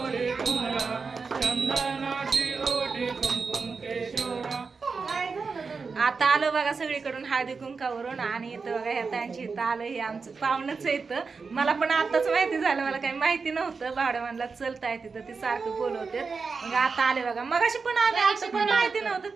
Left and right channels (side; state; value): left; quieter; 4.8 dB